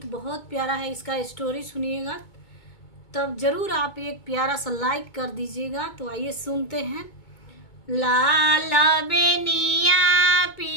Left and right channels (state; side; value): late; right; 2.2 ms